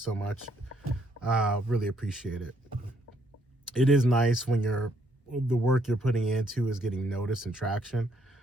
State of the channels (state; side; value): normal; both; correlation 0.71